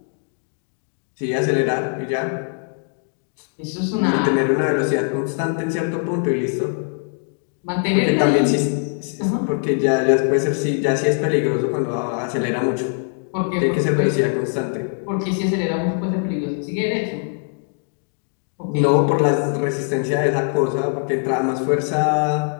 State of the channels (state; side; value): silent; right; 55 dB below the other